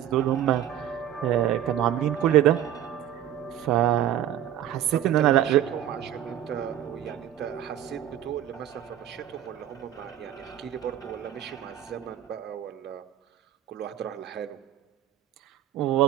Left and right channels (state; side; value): quieter; left; 11.4 dB